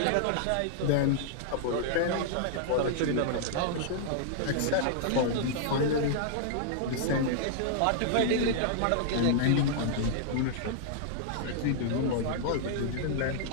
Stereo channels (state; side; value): different; both; correlation -0.01